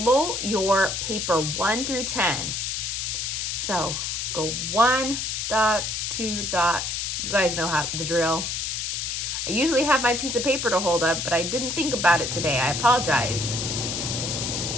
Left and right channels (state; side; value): noise; left; hiss, 2 dB below the sound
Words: your paper 1 through 10. So go 1 dot, 2 dot. You guys know how the drill. I usually have my piece of paper to hold up, but I didn't think about it today. I apologize.